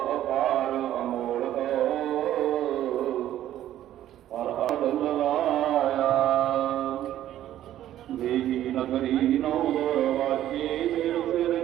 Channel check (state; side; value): quieter; left; 12.4 dB